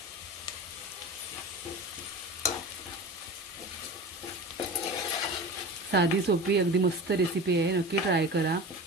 साधी सोपी अगदी मस्त रेसिपी आहे, नक्की ट्राय करा.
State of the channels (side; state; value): both; normal; correlation 0.32